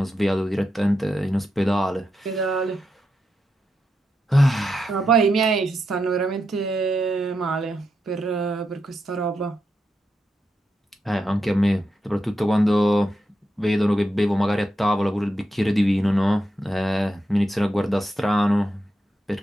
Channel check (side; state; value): both; normal; correlation 0.85